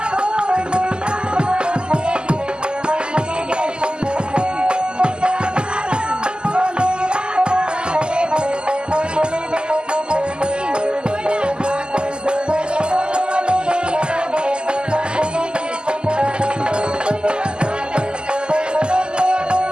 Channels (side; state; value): left; late; 0.048 ms